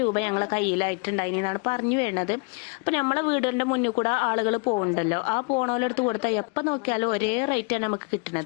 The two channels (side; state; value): right; quieter; 32.1 dB